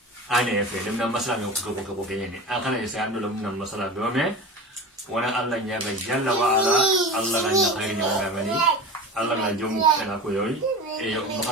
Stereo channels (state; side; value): normal; both; correlation 0.31